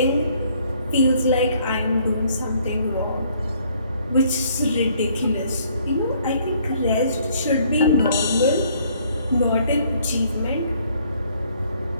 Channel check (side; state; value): both; inverted; correlation -0.63